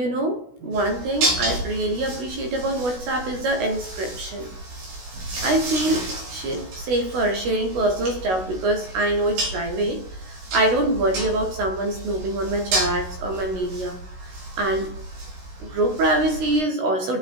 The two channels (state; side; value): late; left; 16 ms